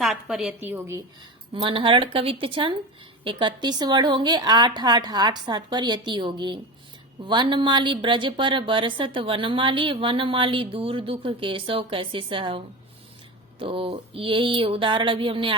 पर यति होगी। मनहरण कवित्त छंद 31 वर्ण होंगे। 8 8 8 7 पर यति होगी। वनमाली ब्रज पर बरसत वनमाली, वनमाली दूर दुख केशव कैसे सहव। तो यही उदाहरण अभी हमने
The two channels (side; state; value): both; normal; correlation 0.25